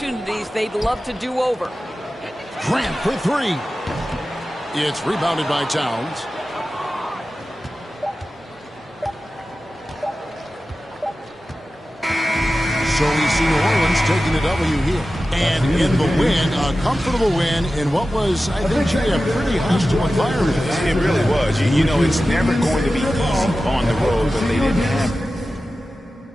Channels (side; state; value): both; normal; correlation 0.94